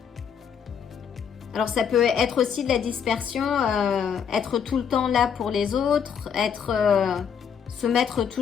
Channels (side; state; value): right; quieter; 7.4 dB